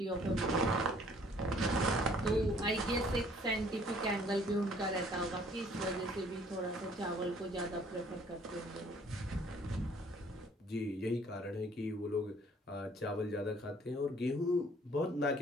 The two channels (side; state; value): both; normal; correlation 0.58